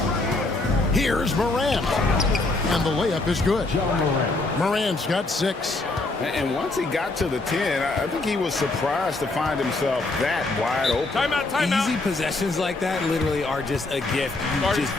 Here's Morant. And the layup is good. Morant's got 6. And once he got to the 10, I think he was surprised to find himself that wide open. Timeout. Easy possessions like that literally are just a gift. You just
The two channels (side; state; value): right; quieter; 3.2 dB